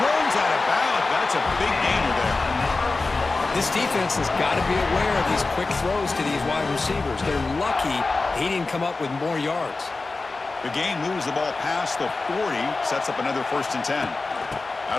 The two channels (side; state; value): right; quieter; 3.6 dB